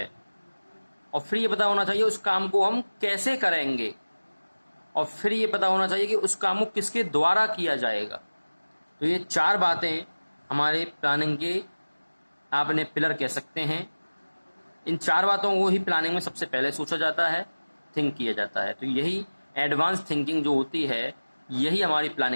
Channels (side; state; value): both; inverted; correlation -1.00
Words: और फिर ये पता होना चाहिए उस काम को हम कैसे करेंगे, और फिर ये पता होना चाहिए कि उस काम को किसके द्वारा किया जाएगा। तो ये चार बातें हमारे प्लानिंग के आपने पिलर कह सकते हैं। इन चार बातों को ही प्लानिंग में सबसे पहले सोचा जाता है, थिंक किया जाता है। तो यही एडवांस थिंकिंग जो होती है यही हमारी